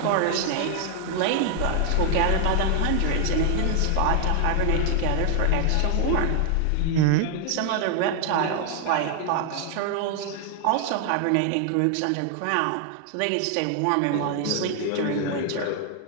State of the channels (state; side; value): different; both; correlation 0.00